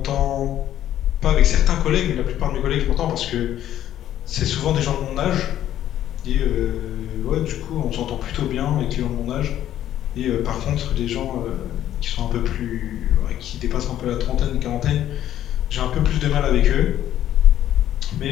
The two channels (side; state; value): right; quieter; 11.9 dB